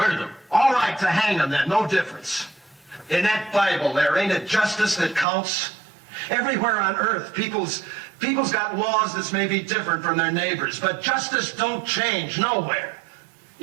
them. All right, to hang them then, no difference. In that Bible there, ain't it justice that counts? Everywhere on earth, people's got laws that's maybe different from their neighbors, but justice don't change nowhere.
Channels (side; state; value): left; drops out; at 5.2 s